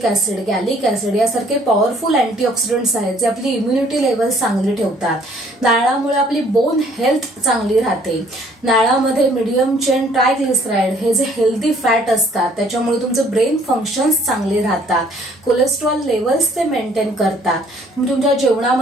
ऍसिड, गॅलिक ऍसिड यासारखे पॉवरफुल अँटीऑक्सिडंट्स आहेत जे आपली इम्युनिटी लेवल चांगली ठेवतात. नारळामुळे आपली बोन हेल्थ चांगली राहते. नारळामध्ये मीडियम चेन ट्रायग्लिसराइड हे जे हेल्दी फॅट असतात त्याच्यामुळे तुमचे ब्रेन फंक्शन्स चांगले राहतात. कोलेस्ट्रॉल लेवल्स ते मेंटेन करतात. तुम्ही तुमच्या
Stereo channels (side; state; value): both; normal; correlation 0.60